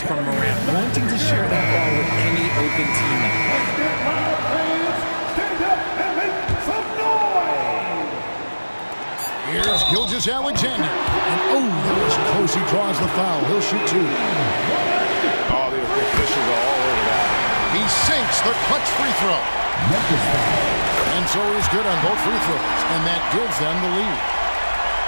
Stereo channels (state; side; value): inverted; both; correlation -1.00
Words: from Morant, wanting to share that ball with any open teammate. Here's Gilgeous-Alexander. And that was close. He draws the foul. He'll shoot 2. All the officials are all over that. He sinks the clutch free throw. And so he's good on both free throws. And that gives them the lead.